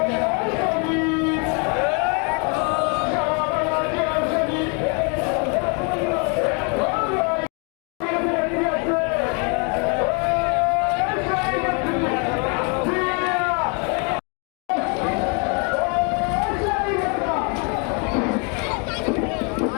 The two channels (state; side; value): quieter; right; 35.8 dB